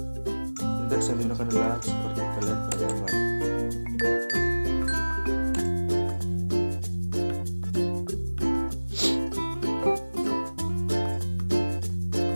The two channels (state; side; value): inverted; both; correlation -1.00